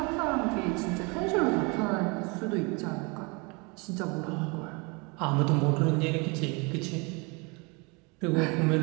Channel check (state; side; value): quieter; left; 29.7 dB